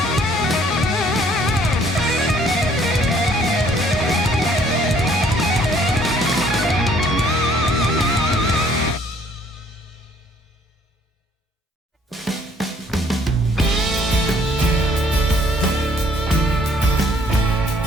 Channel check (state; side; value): normal; both; correlation 0.61